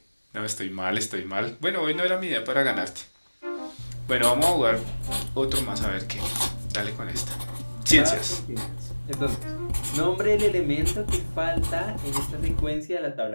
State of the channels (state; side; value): inverted; both; correlation -1.00